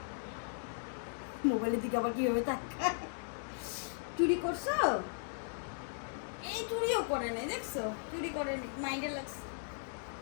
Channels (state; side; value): silent; right; digital silence